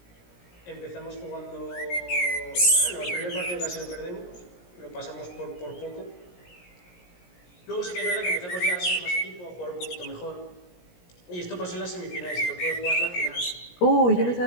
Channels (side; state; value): right; late; 17 ms